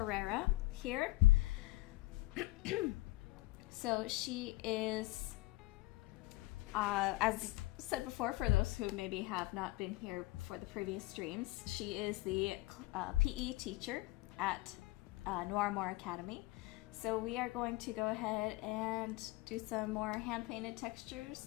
here. So she is, as said before, for those who maybe have not been here for the previous streams, she is the PE teacher at Noirmore Academy. So we are going to go ahead and do some more hand-painted textures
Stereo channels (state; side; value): quieter; right; 19.5 dB